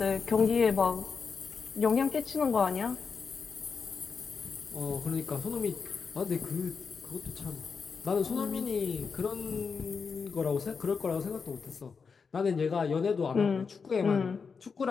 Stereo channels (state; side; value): quieter; right; 5.5 dB